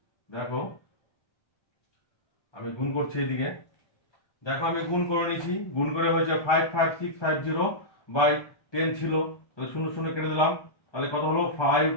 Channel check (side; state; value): right; late; 1.3 ms